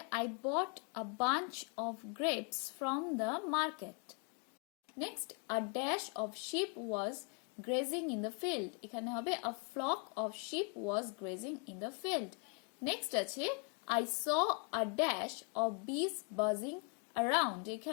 I bought a bunch of grapes from the market. Next, a dash of sheep was grazing in the field. এখানে হবে a flock of sheep was grazing in the field. Next আছে I saw a dash of bees buzzing around.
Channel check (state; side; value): quieter; right; 36.6 dB